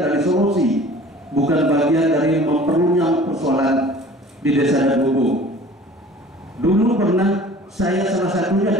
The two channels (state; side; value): normal; both; correlation 0.46